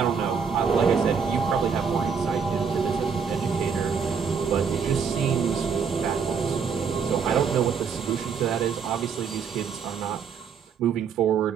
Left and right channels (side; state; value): left; quieter; 6.2 dB